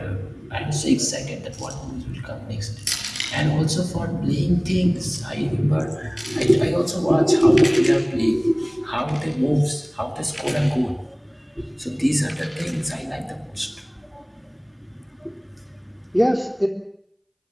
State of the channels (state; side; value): identical; both; correlation 1.00